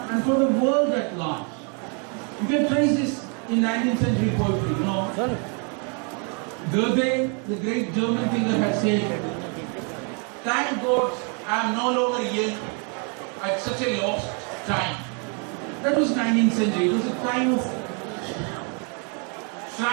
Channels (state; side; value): quieter; left; 37.5 dB